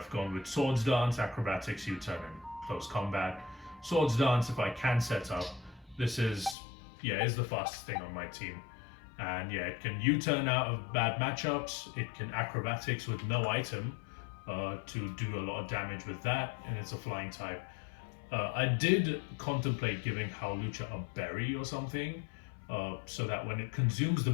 gone with Swords Dance, Acrobatics, U-turn, and Close Combat. Swords Dance, if I can set up, this is the fastest thing on my team. And yeah, it can U-turn out of bad matchups, it can Acrobatics with no item to do a lot of damage with that, and it's a flying type. I did contemplate giving Hawlucha a berry or something, so that when it consumes the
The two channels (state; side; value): drops out; right; at 6.6 s